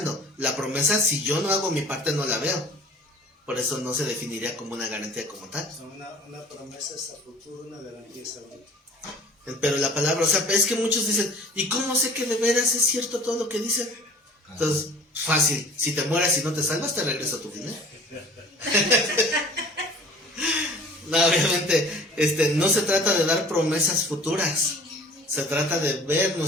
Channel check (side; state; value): both; normal; correlation 0.46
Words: La promesa, si yo no hago mi parte, no la veo. Por eso no se definiría como una garantía como tal. una promesa es a futuro, una garantía es ahorita. Pero la palabra, o sea, es que muchos dicen, ¿y cómo sé que de veras es cierto todo lo que dicen? Entonces, fácil, si te mueras y no te salvas, te regreso a tu dinero. No, obviamente, no se trata de dar promesas futuras, se trata de ver